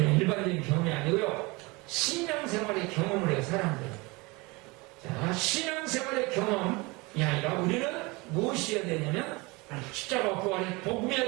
일반적인 경험이 아니고요. 신앙생활의 경험을 해요, 사람들. 자, 신앙생활의 경험이 아니라 우리는 무엇이어야 되냐면 십자가 부활의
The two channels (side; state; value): left; quieter; 25.1 dB